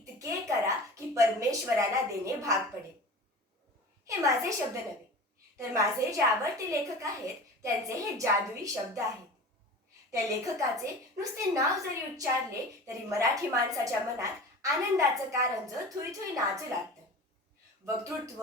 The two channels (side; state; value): both; normal; correlation 0.36